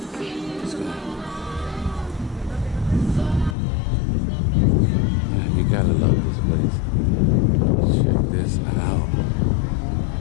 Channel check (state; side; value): drops out; right; at 3.6 s